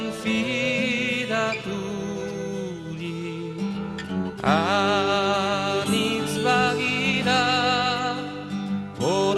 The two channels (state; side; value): identical; both; correlation 1.00